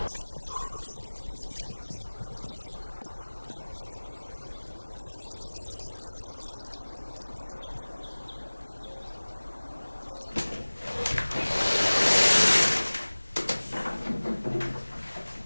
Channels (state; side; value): inverted; both; correlation -1.00